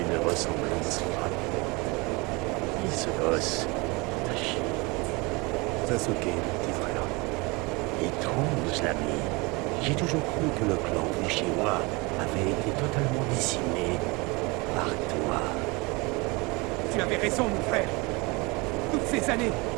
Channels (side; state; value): left; quieter; 26.4 dB